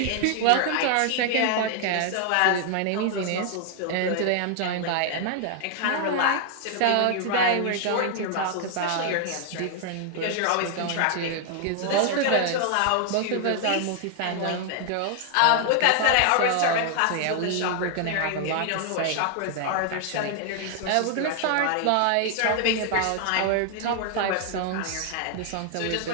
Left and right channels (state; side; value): different; both; correlation 0.00